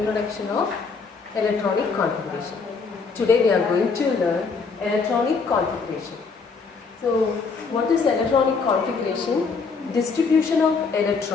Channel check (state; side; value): quieter; right; 4.9 dB